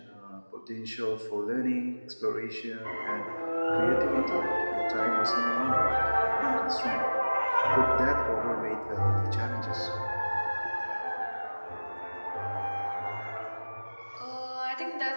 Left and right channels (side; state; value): both; inverted; correlation -1.00